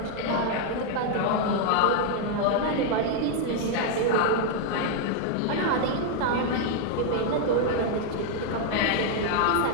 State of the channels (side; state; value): both; different; correlation 0.00